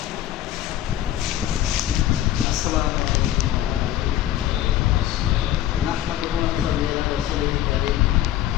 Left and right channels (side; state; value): right; quieter; 12.5 dB